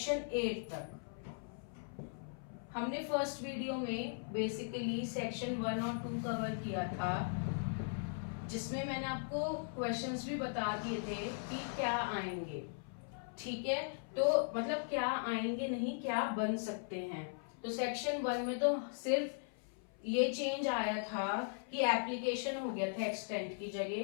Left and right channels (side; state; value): right; silent; 52 dB below the other